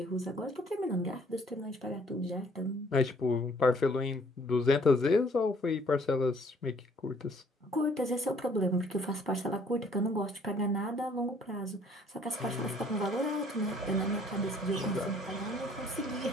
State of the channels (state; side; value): normal; both; correlation 0.60